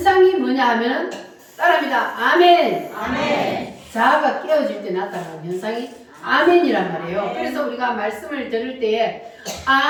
뭐냐 하면 따라합니다. 아멘. 아멘. 자아가 깨어질 때 나타나는 현상이 아멘이란 말이에요. 그래서 우리가 말씀을 들을 때에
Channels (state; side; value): identical; both; correlation 1.00